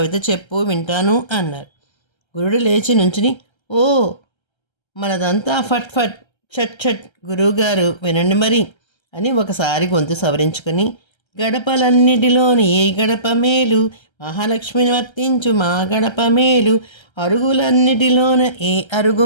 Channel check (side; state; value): right; late; 1.3 ms